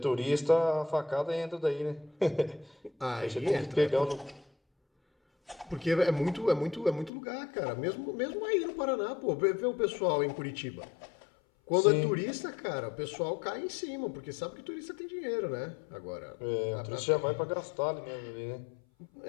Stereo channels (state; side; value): drops out; right; at 7.1 s